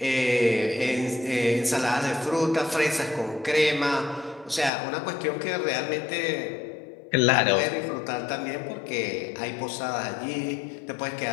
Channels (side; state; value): right; drops out; at 4.7 s